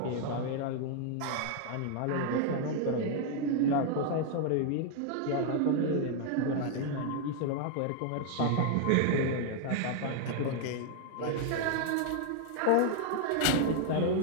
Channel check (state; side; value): different; both; correlation 0.00